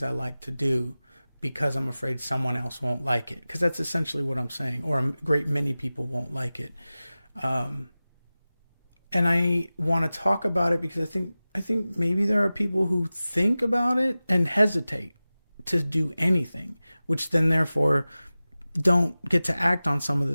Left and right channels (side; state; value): both; inverted; correlation -0.97